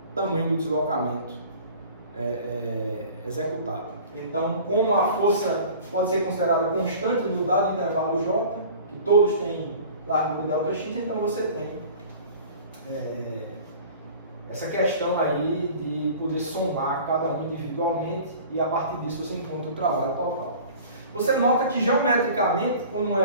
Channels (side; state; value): both; inverted; correlation -0.43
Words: tamanho do deslocamento executado. Então, como a força pode ser considerada constante no dado intervalo J, que todos têm largura ΔX, então você tem essa questão aí de poder somar cada um individualmente e a partir disso você encontra o trabalho total. Você nota que geometricamente, como